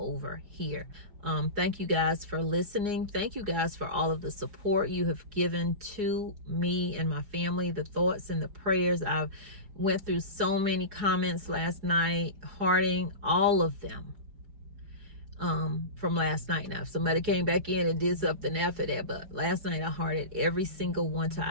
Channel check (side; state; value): left; late; 4.9 ms